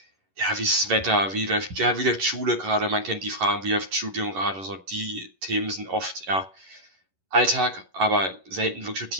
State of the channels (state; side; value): late; left; 11 ms